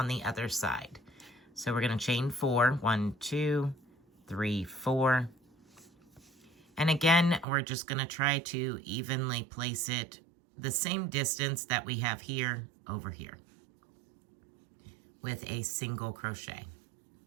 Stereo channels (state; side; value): drops out; left; at 7.5 s